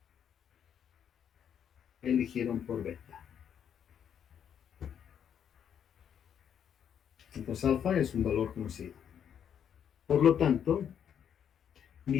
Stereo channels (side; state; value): right; quieter; 8.6 dB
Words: eligieron por beta. Entonces alfa es un valor conocido. Por lo tanto,